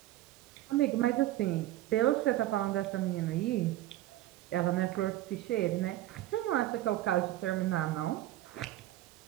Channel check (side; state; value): left; quieter; 14.9 dB